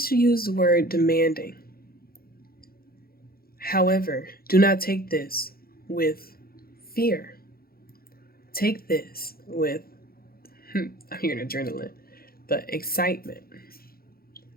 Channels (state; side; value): late; right; 0.44 ms